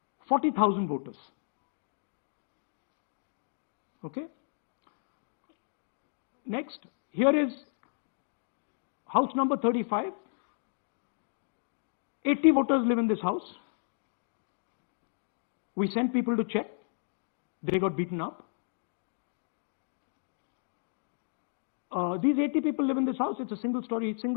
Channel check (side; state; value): right; silent; digital silence